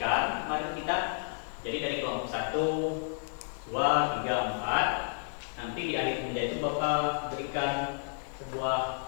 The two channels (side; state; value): right; silent; digital silence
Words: mari kita jadi dari kelompok 1, 2, 3, 4. Nanti di akhir pembelajaran itu Bapak berikan